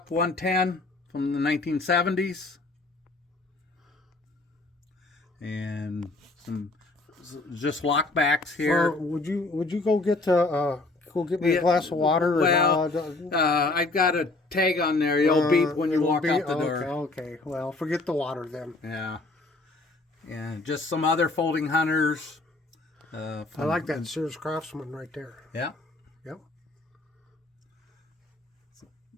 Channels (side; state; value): right; quieter; 3.2 dB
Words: 110 from the 1970s. And some just lockbacks here. Would you go get me a glass of water? Well, I've got a tag on there. You'll beep when you walk out the door. Okay. Well, forget the water then. Yeah. And just some other folding hunters. I like that Sears Craftsman right there. Yeah. Yep.